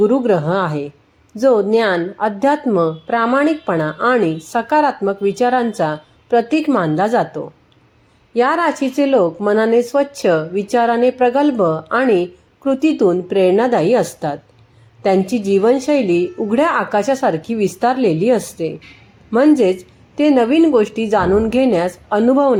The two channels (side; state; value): both; identical; correlation 1.00